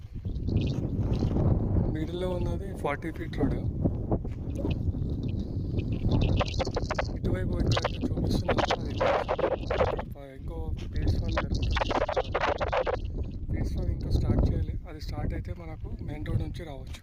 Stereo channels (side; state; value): both; identical; correlation 1.00